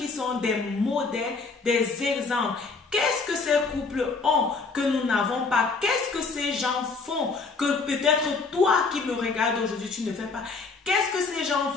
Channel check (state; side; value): quieter; right; 4.3 dB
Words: sont des modèles, des exemples. Qu'est-ce que ces couples ont que nous n'avons pas? Qu'est-ce que ces gens font que peut-être toi qui me regardes aujourd'hui, tu ne fais pas? Qu'est-ce que ces gens